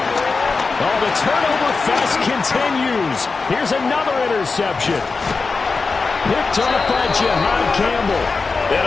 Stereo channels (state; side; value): quieter; right; 4.3 dB